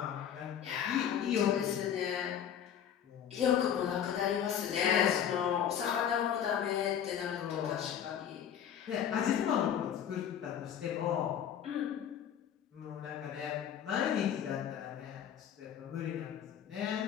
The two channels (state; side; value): quieter; right; 9.2 dB